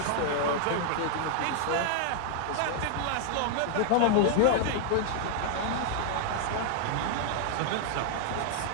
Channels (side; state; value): both; different; correlation 0.00